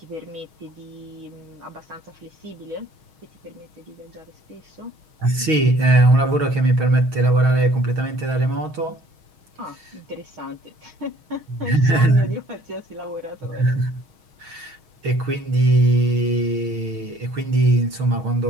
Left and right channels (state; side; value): late; left; 6.4 ms